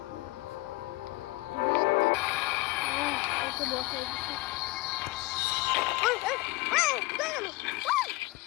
ওকে বসাই দিচ্ছি। কোথায় গেল?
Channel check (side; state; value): right; quieter; 21.6 dB